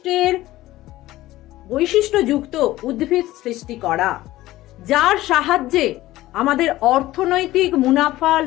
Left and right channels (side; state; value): right; quieter; 16.4 dB